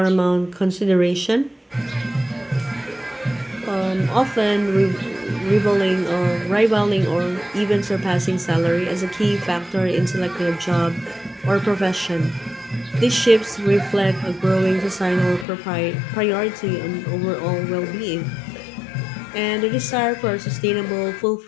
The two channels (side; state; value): right; drops out; at 15.5 s